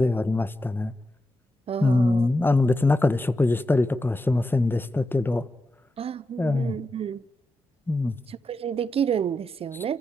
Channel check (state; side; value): normal; both; correlation 0.88